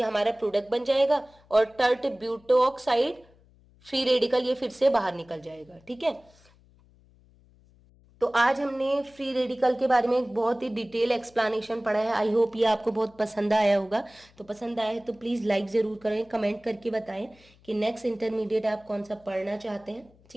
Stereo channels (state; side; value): noise; left; hum, 29 dB below the sound